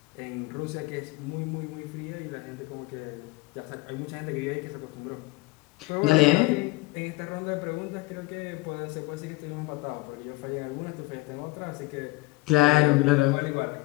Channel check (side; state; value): right; quieter; 21.6 dB